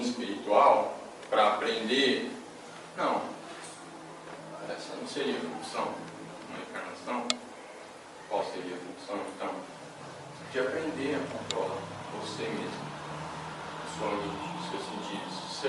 espiritual, para aprender... Não. Essa não seria a função de uma encarnação. Qual seria a função, então? De aprender a controlar você mesmo, a sua mente, os seus sentidos,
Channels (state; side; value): identical; both; correlation 1.00